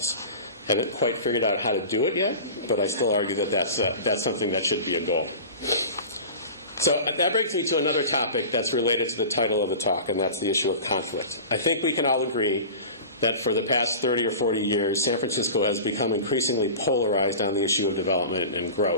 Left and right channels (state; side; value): inverted; both; correlation -0.35